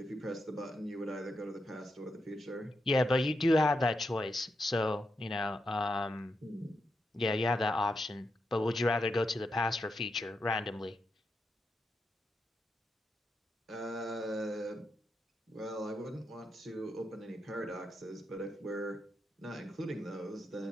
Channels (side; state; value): both; normal; correlation 0.84